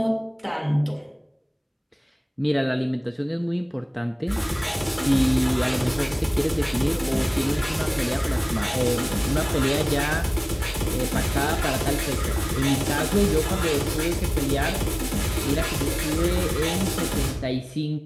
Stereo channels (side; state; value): both; identical; correlation 1.00